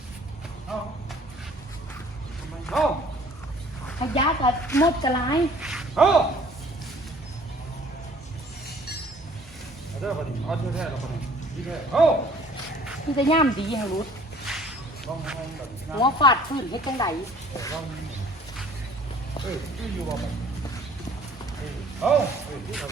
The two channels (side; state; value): both; normal; correlation 0.54